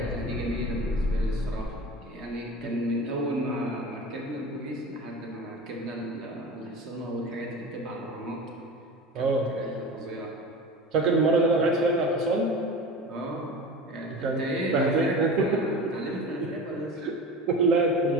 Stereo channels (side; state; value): both; normal; correlation 0.33